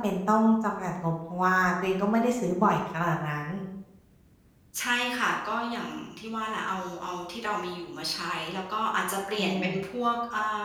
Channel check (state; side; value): identical; both; correlation 1.00